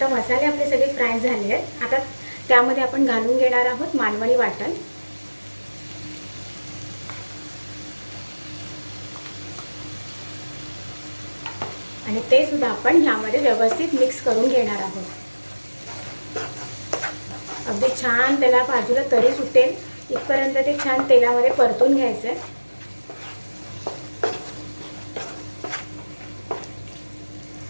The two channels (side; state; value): both; inverted; correlation -1.00